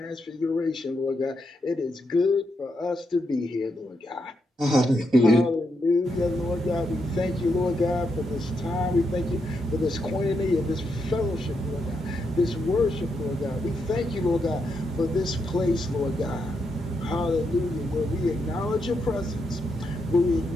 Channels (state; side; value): normal; both; correlation 0.82